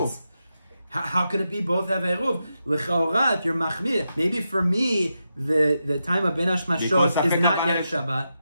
How could it be both have eruv? L'chaora, if you're machmir, maybe for me, the time of bein hashmashot is not yet Shabbat.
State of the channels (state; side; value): inverted; both; correlation -0.87